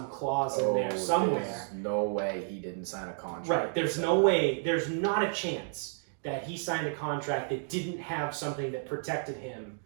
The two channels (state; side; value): silent; left; digital silence